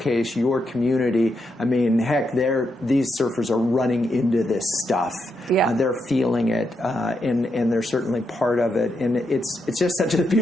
your community, I mean, heck, these surfers are running into this stuff. Yeah. They're feeling it, and they're certainly part of it. And it's just such a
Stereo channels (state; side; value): normal; both; correlation 0.83